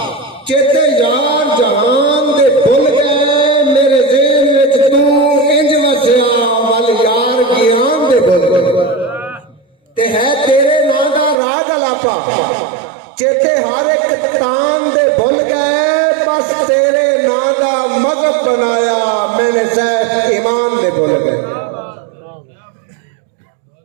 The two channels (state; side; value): drops out; left; at 11.4 s